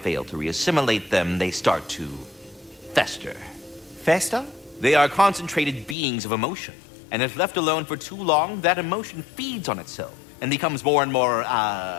to reassimilate them, they start to fester. Fester? They are concentrated beings of emotion, and if left alone for too long, that emotion feeds on itself and becomes more and more,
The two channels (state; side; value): drops out; right; at 6.0 s